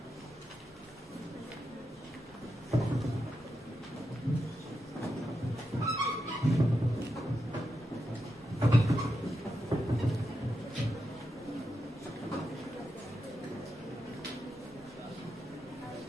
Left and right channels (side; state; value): both; normal; correlation 0.86